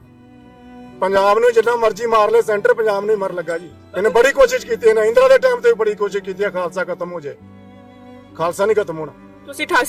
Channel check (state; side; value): identical; both; correlation 1.00